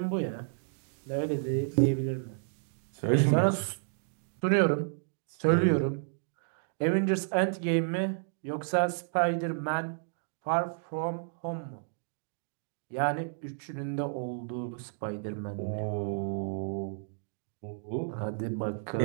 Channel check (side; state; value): left; silent; digital silence